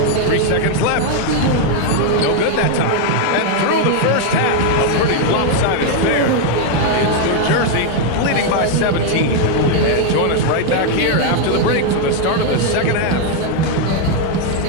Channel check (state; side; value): different; both; correlation 0.01